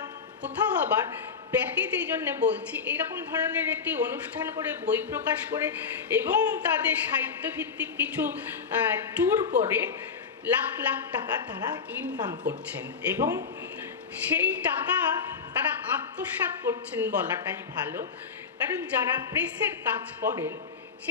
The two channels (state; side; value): quieter; right; 5.8 dB